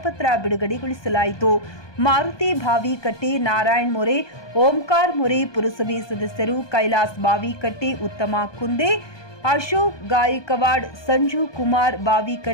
ಬಿಡುಗಡೆಗೊಳಿಸಲಾಯಿತು. ಮಾರುತಿ ಬಾವಿಕಟ್ಟೆ, ನಾರಾಯಣ್ ಮೋರೆ, ಓಂಕಾರ ಮೋರೆ, ಪುರಸಭೆ ಸದಸ್ಯರು ಕೈಲಾಸ್ ಬಾವಿಕಟ್ಟೆ, ಉತ್ತಮ ಕುಂದೆ, ಅಶೋಕ್ ಗಾಯಕವಾಡ್, ಸಂಜು ಕುಮಾರ್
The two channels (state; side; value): late; right; 1.2 ms